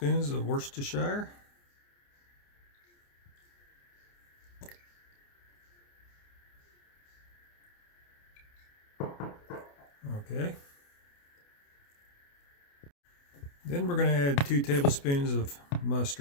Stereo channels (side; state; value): right; late; 28 ms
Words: of Worcestershire. Okay. Then we're going to add 2 tablespoons of